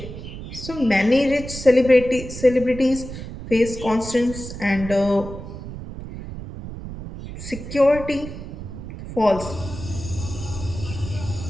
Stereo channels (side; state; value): right; noise; rumble, 10 dB below the sound